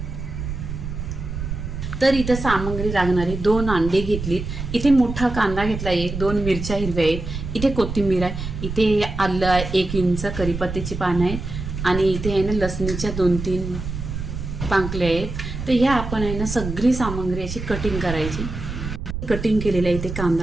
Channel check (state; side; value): noise; right; rumble, 6 dB below the sound